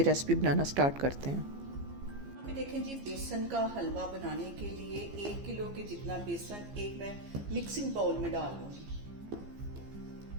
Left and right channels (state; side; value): late; left; 15 ms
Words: रेसिपी बनाना स्टार्ट करते हैं। यहाँ पे देखें जी, बेसन का हलवा बनाने के लिए 1 किलो के जितना बेसन एक मैं मिक्सिंग बाउल में डाल लूंगी।